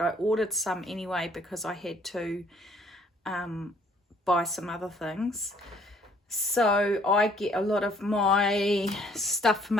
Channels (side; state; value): both; normal; correlation 0.61